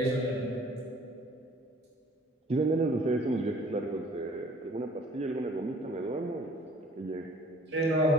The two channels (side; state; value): both; normal; correlation 0.53